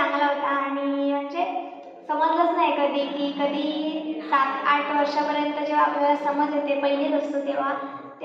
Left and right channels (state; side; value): identical; both; correlation 1.00